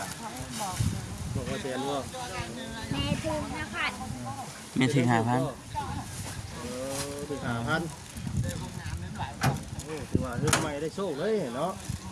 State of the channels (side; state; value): both; identical; correlation 1.00